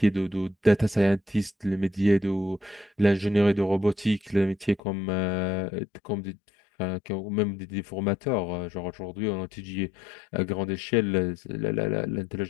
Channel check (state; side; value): drops out; right; at 4.8 s